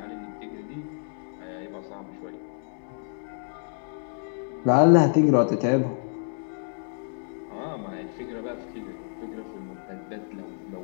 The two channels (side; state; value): right; silent; 59 dB below the other